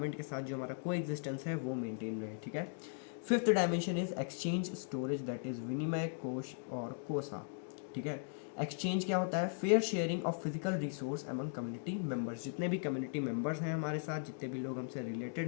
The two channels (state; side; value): silent; right; digital silence